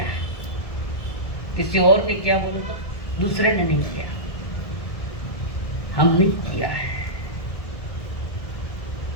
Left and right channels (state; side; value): late; right; 1.7 ms